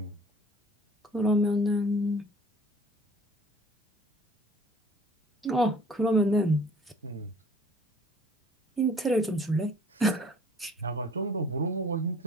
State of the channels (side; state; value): both; normal; correlation 0.51